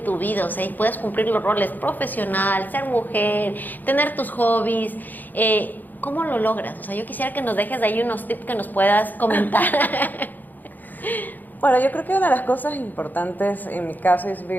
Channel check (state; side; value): late; right; 0.085 ms